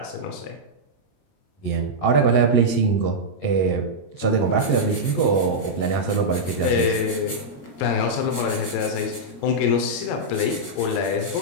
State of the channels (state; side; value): late; right; 22 ms